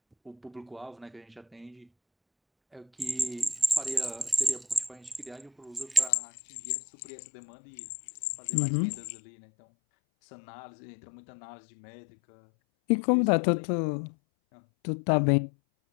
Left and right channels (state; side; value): drops out; right; at 6.1 s